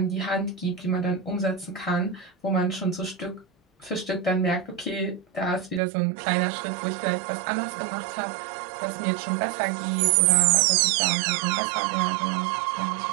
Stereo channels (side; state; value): left; drops out; at 5.8 s